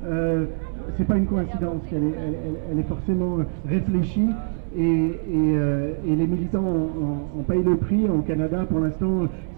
c'est pas une coïncidence, elle est forcément réfléchie, et les militants en payent le prix. Au Canada, pour l'instant,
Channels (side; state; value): left; silent; digital silence